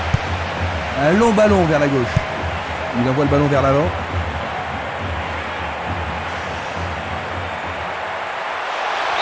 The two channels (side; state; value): both; identical; correlation 1.00